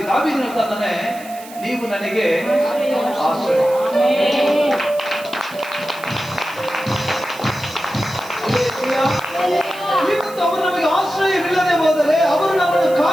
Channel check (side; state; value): right; noise; hiss, 18 dB below the sound